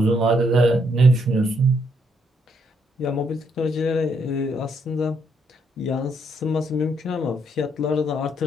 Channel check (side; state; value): both; normal; correlation 0.73